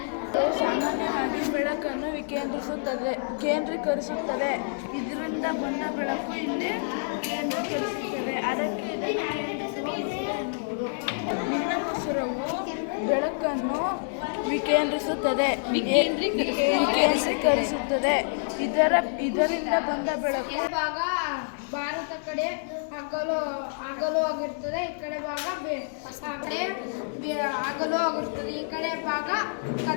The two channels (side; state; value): right; silent; digital silence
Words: ಸಾಮಾನ್ಯವಾಗಿ ಬೆಳಕನ್ನು ಕೇಂದ್ರೀಕರಿಸುತ್ತದೆ. ಇದರಿಂದ ಬಂದ ಬೆಳಕು ಇಲ್ಲಿ ಕೇಂದ್ರೀಕರಿಸುತ್ತದೆ. ಅದಕ್ಕೆ ಇದನ್ನು ಕೇಂದ್ರಿಸುವ ಎನ್ನುವುದು. ನೀಲಮಸೂರವು ಬೆಳಕನ್ನು ವಿಕೇಂದ್ರೀಕರಿಸುತ್ತದೆ. ಇದರಿಂದ ಬಂದ ಬೆಳಕು ಭಾಗ ಭಾರತ ಕಡೆ ಹಗಲು ಆಗಿರ್ತದೆ. ಈ ಕಡೆ ಭಾಗ ಹಗಲು ಆಗಿರ್ತದೆ. ಈ ಕಡೆ ಭಾಗ